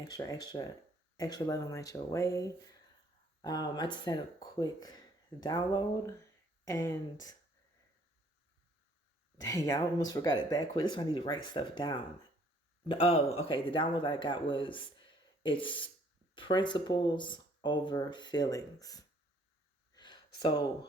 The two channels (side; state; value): both; normal; correlation 0.61